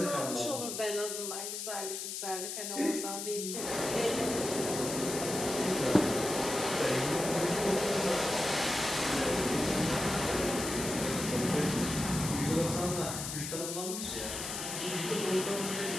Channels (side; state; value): left; noise; hiss, 5 dB below the sound